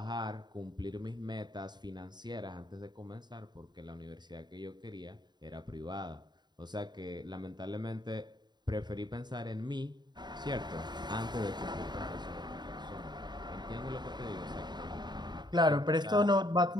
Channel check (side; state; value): left; late; 0.21 ms